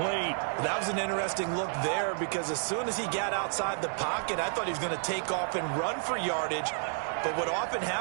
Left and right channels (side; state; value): left; silent; 57 dB below the other